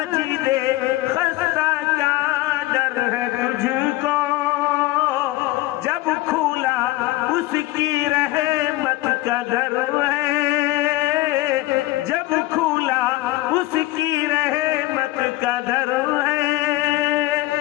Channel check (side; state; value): right; quieter; 17.8 dB